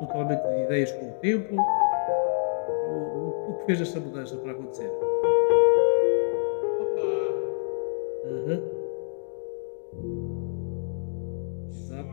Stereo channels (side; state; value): right; silent; digital silence